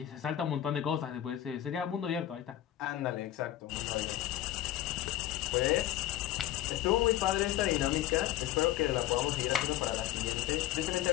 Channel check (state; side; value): quieter; right; 13.4 dB